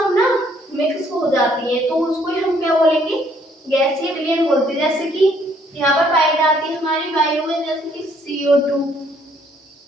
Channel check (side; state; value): both; normal; correlation 0.65